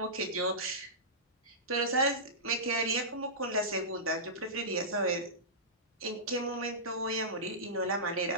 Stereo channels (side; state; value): both; normal; correlation -0.18